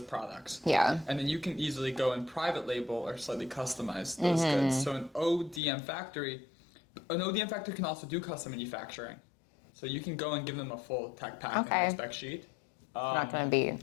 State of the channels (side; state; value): right; drops out; at 5.6 s